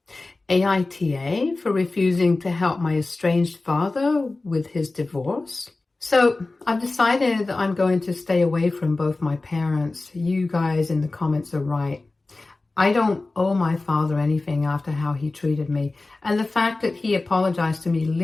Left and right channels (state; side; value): quieter; right; 3.3 dB